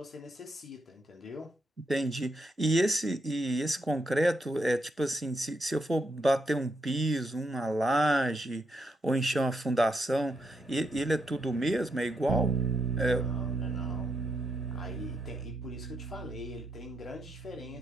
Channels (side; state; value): both; normal; correlation 0.80